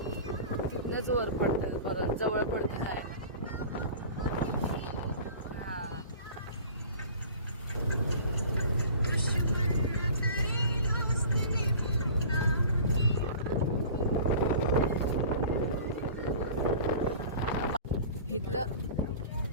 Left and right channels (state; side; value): inverted; both; correlation -0.41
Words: तिथनंच वर पडतं, परत जवळ पडतं जायला. हा,